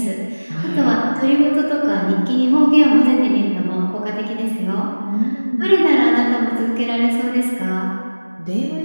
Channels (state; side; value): inverted; both; correlation -1.00